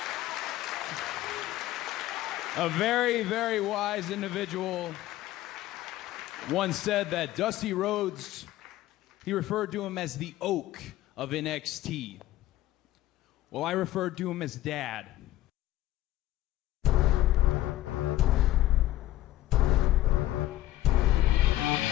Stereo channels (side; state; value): right; quieter; 15.0 dB